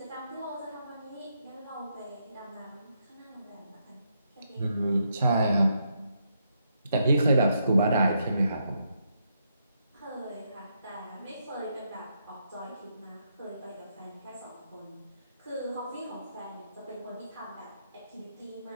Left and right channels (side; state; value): both; inverted; correlation -0.78